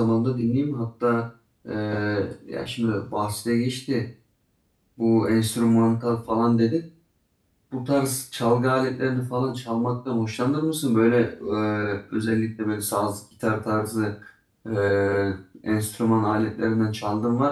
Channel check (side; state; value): both; identical; correlation 1.00